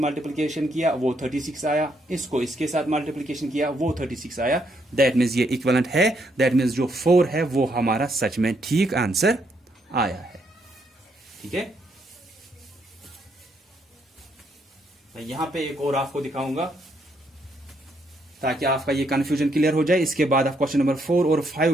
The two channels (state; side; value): normal; both; correlation 0.74